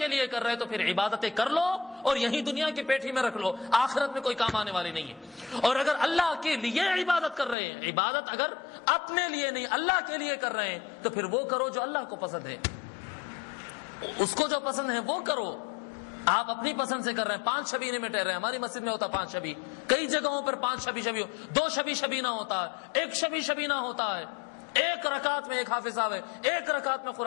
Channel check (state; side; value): drops out; right; at 7.6 s